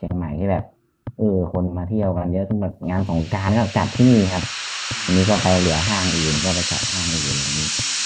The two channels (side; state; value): both; identical; correlation 1.00